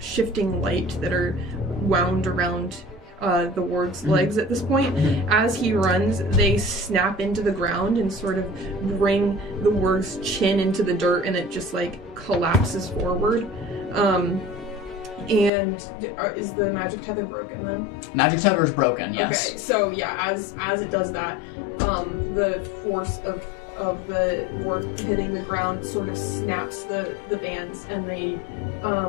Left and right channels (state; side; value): drops out; right; at 15.5 s